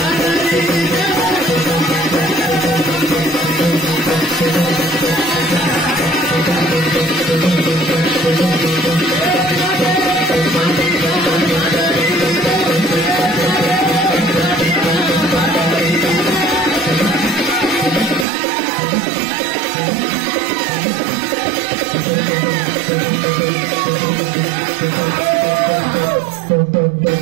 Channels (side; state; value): left; drops out; at 18.2 s